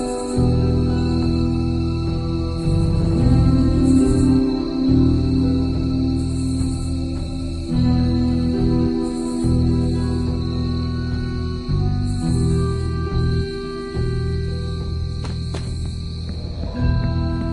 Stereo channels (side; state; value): both; identical; correlation 1.00